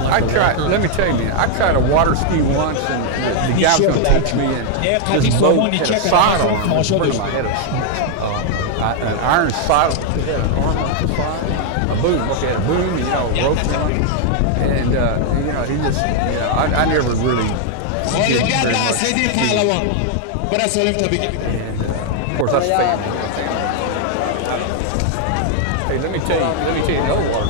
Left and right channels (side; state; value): both; different; correlation 0.00